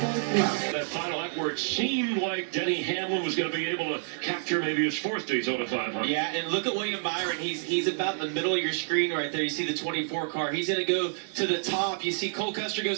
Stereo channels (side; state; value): left; silent; digital silence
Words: love. That final lap where it seemed like Denny Hamlin was going to be able to capture maybe his fourth Daytona 500. Yeah, and look at William Byron. He's about in the middle of your screen right there. You see the 24 car. He's going to go to the top. You see Cole Custer